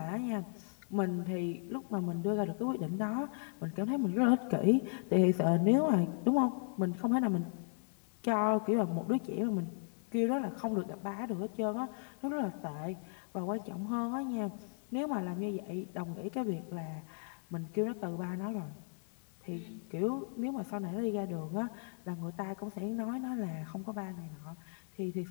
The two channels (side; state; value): right; silent; 54 dB below the other